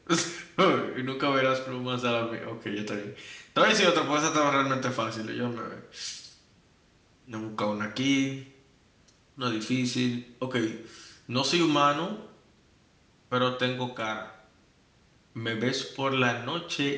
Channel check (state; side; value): identical; both; correlation 1.00